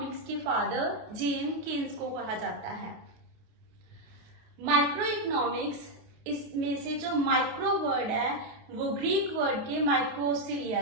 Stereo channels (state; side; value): late; left; 28 ms